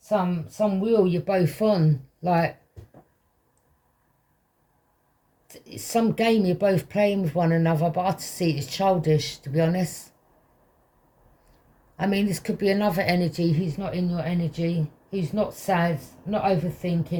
some wheel you're both on. Like, it's some game you're both playing with one another, but I see it as childish, to be honest. I mean, this could be another energy who's not in your energy, who's not sad, not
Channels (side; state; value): both; identical; correlation 1.00